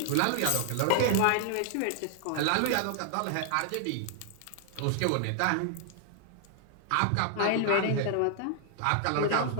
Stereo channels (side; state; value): both; different; correlation 0.00